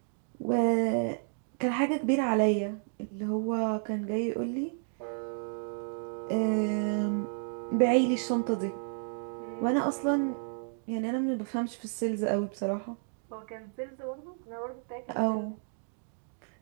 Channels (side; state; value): left; silent; digital silence